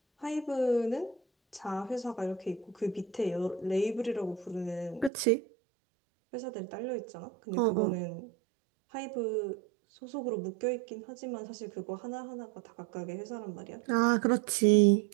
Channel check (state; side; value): drops out; left; at 5.1 s